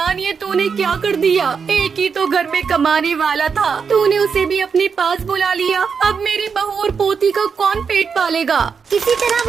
ये तूने क्या कर दिया। एक ही तो घर में कमाने वाला था, तूने उसे भी अपने पास बुला लिया। अब मेरी बहू और पोती का कौन पेट पालेगा। किसी तरह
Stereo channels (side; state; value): left; quieter; 6.0 dB